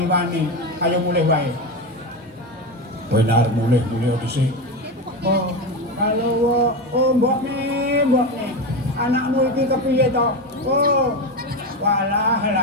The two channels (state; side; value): normal; both; correlation 0.17